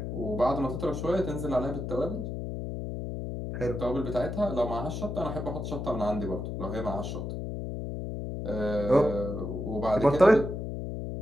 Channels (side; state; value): left; noise; hum, 5 dB below the sound